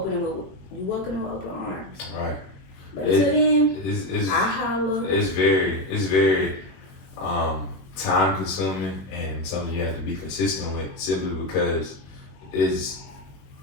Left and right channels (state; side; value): late; right; 21 ms